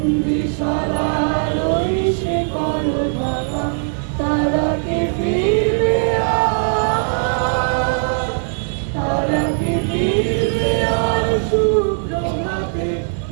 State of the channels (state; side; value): silent; left; digital silence